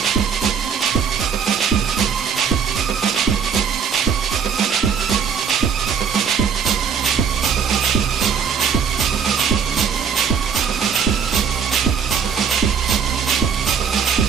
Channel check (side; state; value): left; quieter; 6.9 dB